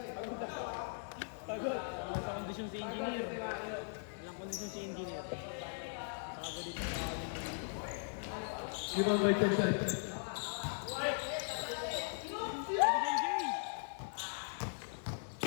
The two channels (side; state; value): right; silent; digital silence